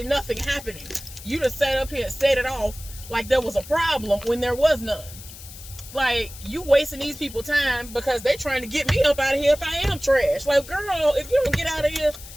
nothing happening. You done sat up here and set it off like there was a problem when there was none. Like, you wasting these people time because they trying to get me up out of here if I am trash. Like, girl, if you don't get out of here.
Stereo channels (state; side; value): noise; left; hiss, 16 dB below the sound